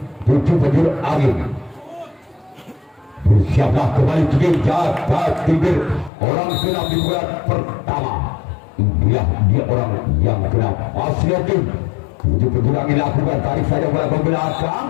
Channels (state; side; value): drops out; right; at 6.1 s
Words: tujuh penjuru angin. Bersiaplah kembali tim jaga tiga orang keenam di bulan pertama. Dia orang yang keenam masih dari tim tujuh penjuru angin lakukan tarik saja bola ke belakang.